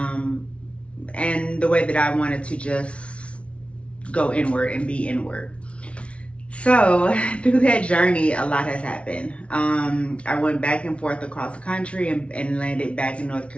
the way that I wanted to just go inward and be inward. So through that journey, a lot has happened. I went back and forth across the country and landed back in North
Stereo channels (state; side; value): late; right; 0.061 ms